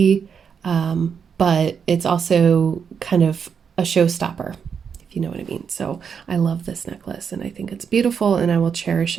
but it's also kind of a showstopper, if you know what I mean. So I love this necklace, and I think it's beautiful, and I will cherish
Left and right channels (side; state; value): left; quieter; 6.8 dB